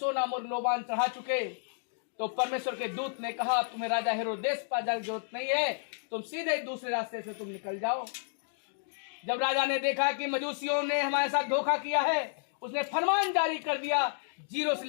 मुर्र लोबान चढ़ा चुके, तो परमेश्वर के दूत ने कहा तुम्हें राजा हेरोदेस पास जाने की जरूरत नहीं है, तुम सीधे दूसरे रास्ते से तुम निकल जाओ। जब राजा ने देखा कि मजूसियों ने हमारे साथ धोखा किया है, उसने फरमान जारी कर दिया 0 से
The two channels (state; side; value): silent; right; digital silence